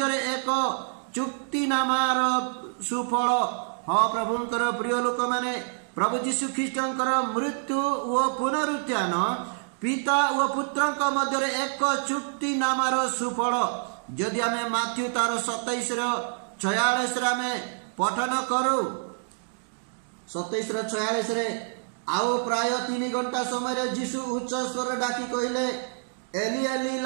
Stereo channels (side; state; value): left; silent; digital silence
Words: एक चुक्ति नामार सुफल हाँ प्रभुंकर प्रिय लोक माने प्रभु यीशु ख्रीष्टंकर मृत्यु व पुनरुत्थान पिता व पुत्रक मध्य एक चुक्ति नामार सुफल जदि आमे माथ्यू तार 27:46 रे पठन करू 27:46 रे आओ प्राय 3 घंटा समय यीशु उच्च स्वर डाकी कहले एली एली